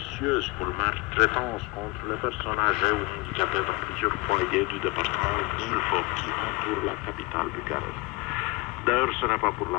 pour maltraitance contre les personnes âgées ou handicapées dans plusieurs foyers du département d'Ilfov qui entoure la capitale Bucarest. D'ailleurs, ce n'est pas pour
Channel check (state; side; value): quieter; right; 23.8 dB